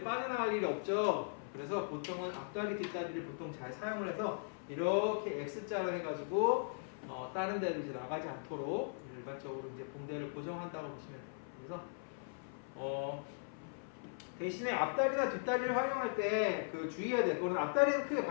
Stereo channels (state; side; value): silent; right; 52 dB below the other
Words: 빠져나갈 일이 없죠. 그래서 보통은 앞다리 뒷다리를 보통 잘 사용을 해서 이렇게 X자로 해가지고 다른 데를 이제 나가지 않도록 일반적으로 이제 붕대를 고정한다고 보시면 돼요. 그래서 대신에 앞다리나 뒷다리를 활용할 때 그 주의해야 될 거는 앞다리는 크게